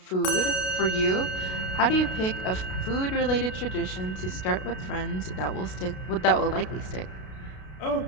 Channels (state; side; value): late; right; 32 ms